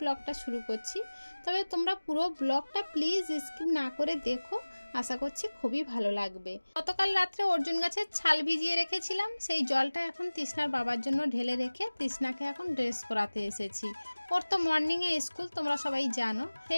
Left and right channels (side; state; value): both; inverted; correlation -1.00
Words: शुरू करछि। तबे तोमरा पुरो ब्लगटा प्लिज स्किप ना करे देखो, आशा करछि खूबই ভালো লাগবে। गतकाल रात्रे अर्जुन गाছের ছাল ভিজিয়ে রেখেছিলাম, সেই জলটা এখন তৃষ্ণার বাবার জন্য ঢেলে রেখে তৃষ্ণাকে এখন ড্রেস পরাতে এসেছি। ওর তো মর্নিং এ স্কুল তোমরা সবাই জানো,